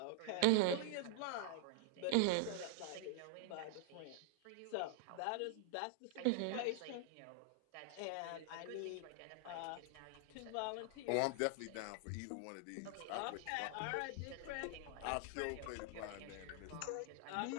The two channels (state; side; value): different; both; correlation 0.00